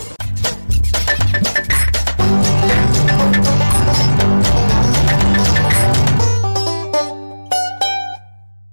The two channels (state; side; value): inverted; both; correlation -1.00